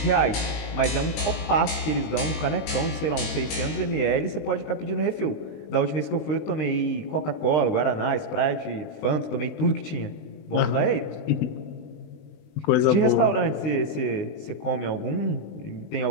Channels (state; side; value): late; right; 19 ms